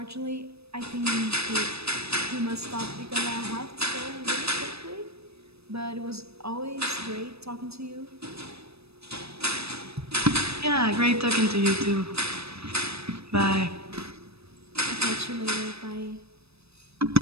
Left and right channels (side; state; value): left; late; 0.78 ms